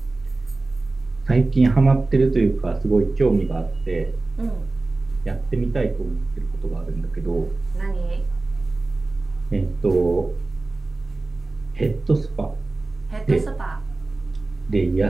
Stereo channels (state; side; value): quieter; left; 3.3 dB